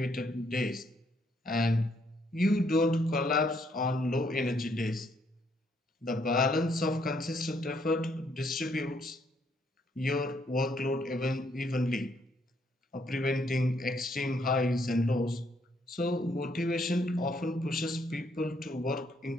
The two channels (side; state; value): both; normal; correlation 0.71